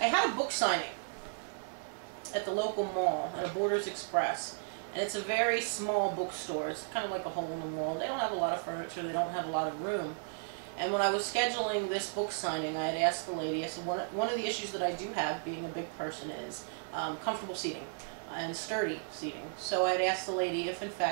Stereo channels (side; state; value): left; silent; 55 dB below the other